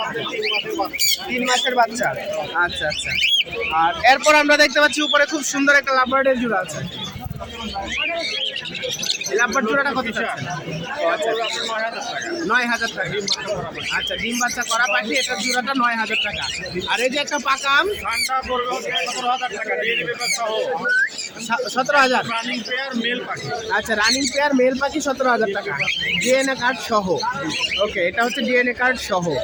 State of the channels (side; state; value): both; identical; correlation 1.00